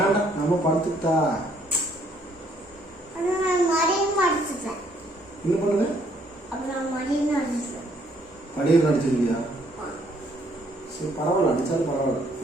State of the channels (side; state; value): both; normal; correlation 0.66